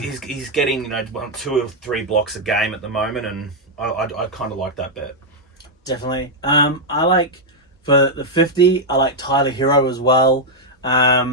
getting 2 or 3 blocks a game at the moment, and I kind of like that bet. Definitely. I like, for the 50, I like Tyler Hero as well.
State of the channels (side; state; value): both; normal; correlation -0.01